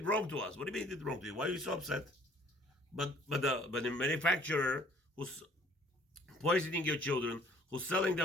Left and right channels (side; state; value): both; normal; correlation 0.56